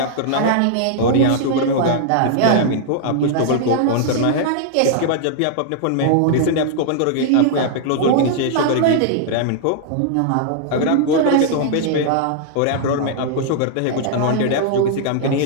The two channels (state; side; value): different; both; correlation -0.01